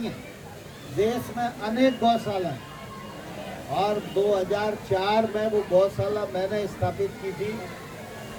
है, देश में अनेक गौशाला है। और 2004 में वो गौशाला मैंने स्थापित की थी।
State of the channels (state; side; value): identical; both; correlation 1.00